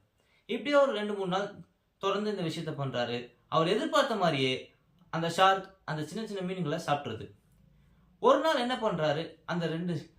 இப்படியே ஒரு 2-3 நாள் தொடர்ந்து இந்த விஷயத்த பண்ணுறாரு. அவர் எதிர்பார்த்த மாதிரியே அந்த ஷார்க் அந்த சின்ன சின்ன மீன்களை சாப்பிட்றது. ஒரு நாள் என்ன பண்ணுறாரு,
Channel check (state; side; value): identical; both; correlation 1.00